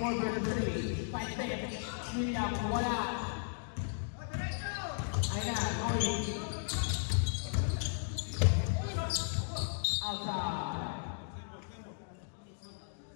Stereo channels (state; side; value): silent; right; digital silence